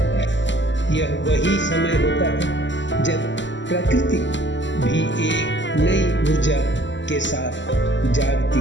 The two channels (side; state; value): right; late; 0.54 ms